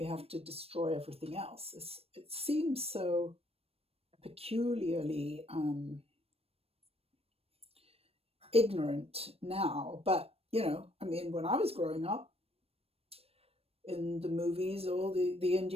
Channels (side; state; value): left; late; 0.28 ms